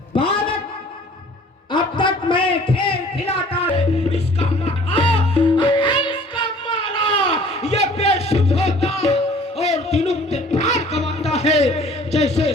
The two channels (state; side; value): normal; both; correlation 0.52